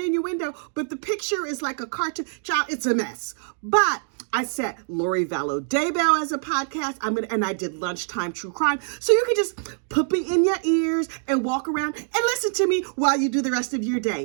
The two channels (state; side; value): silent; left; digital silence